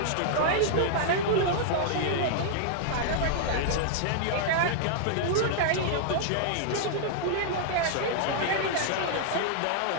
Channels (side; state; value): both; different; correlation -0.01